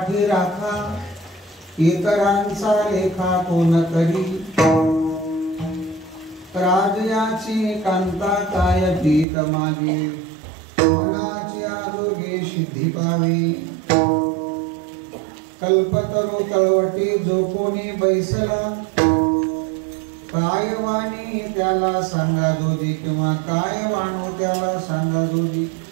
राखा, इतरांचा लेखा कोण करी, राजयाची कांता काय पीत मागे, मनाची आरोग्य सिद्धी पावे, कल्पतरू तळवटी जो कोणी बैसला, काय वाणी त्याला सांगा जोजी, किंवा काय वाणू त्याला सांगा जोजी,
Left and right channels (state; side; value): drops out; left; at 9.2 s